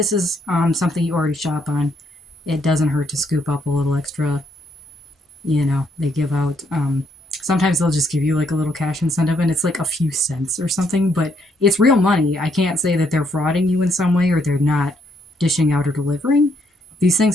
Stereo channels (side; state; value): both; normal; correlation 0.73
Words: is something you already shop on, it doesn't hurt to scoop up a little extra. You know, they give out, sometimes they'll just give you like a little cash incentive, and it's like a few cents or something, but it's real money. I can't say that they're frauding you in some way or they're not dishing out or delivering. These